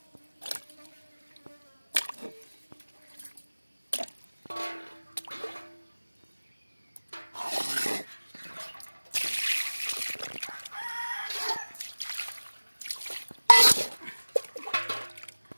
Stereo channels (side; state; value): both; inverted; correlation -1.00